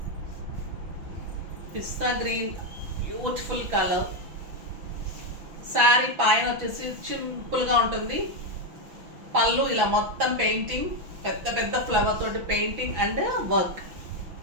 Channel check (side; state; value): left; late; 6.0 ms